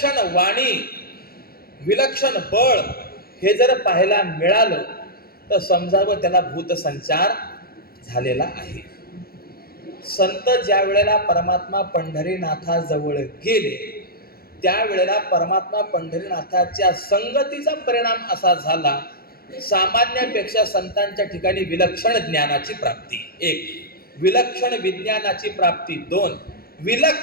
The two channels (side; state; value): right; late; 0.44 ms